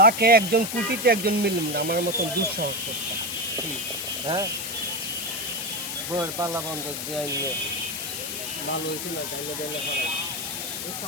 একজন কোটিতে একজন মিললাম না আমার মতন দুঃসাহস করতে হ্যাঁ বর পাল্লা বন্ধ দিয়ে আইলে ভালো হয়েছিল চাইলে দিলে এই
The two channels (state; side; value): noise; left; hiss, 4 dB below the sound